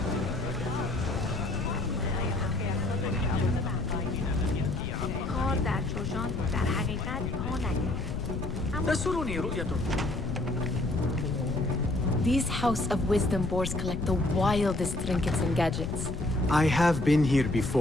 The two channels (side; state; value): left; noise; rumble, 4 dB below the sound